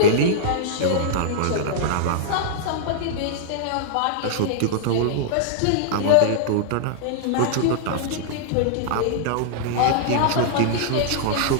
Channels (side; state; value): both; different; correlation -0.01